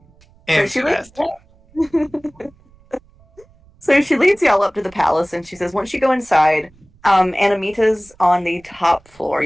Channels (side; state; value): right; noise; rumble, 30 dB below the sound